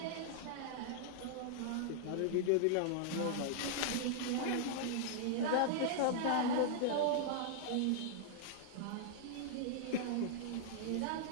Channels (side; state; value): both; different; correlation -0.01